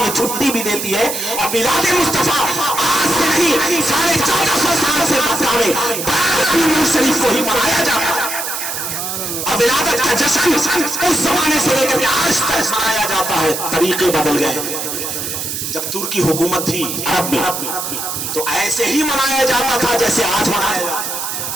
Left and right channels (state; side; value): noise; right; hiss, 4 dB below the sound